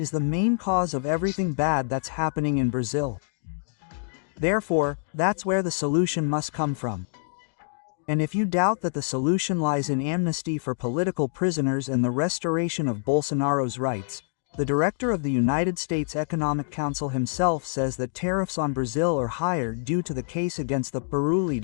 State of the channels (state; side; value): silent; right; digital silence